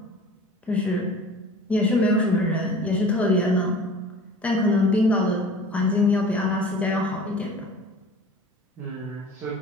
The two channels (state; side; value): normal; both; correlation 0.42